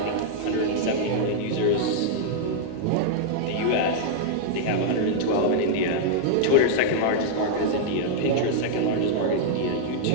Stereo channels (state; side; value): different; both; correlation -0.01